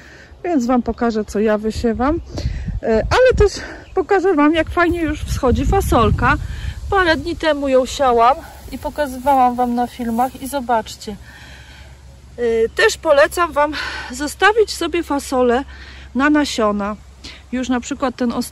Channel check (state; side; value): identical; both; correlation 1.00